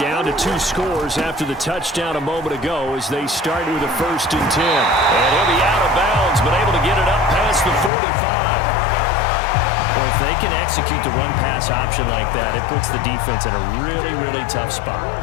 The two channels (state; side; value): drops out; right; at 7.9 s